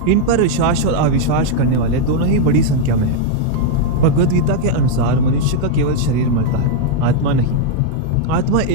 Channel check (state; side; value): different; both; correlation 0.00